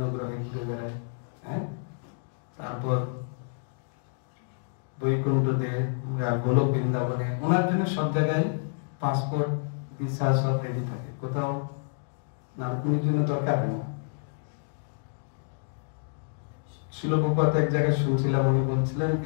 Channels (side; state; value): right; silent; digital silence